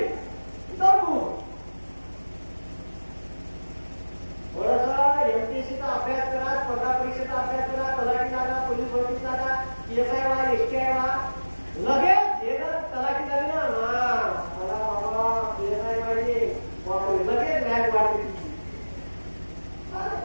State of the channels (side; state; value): both; inverted; correlation -1.00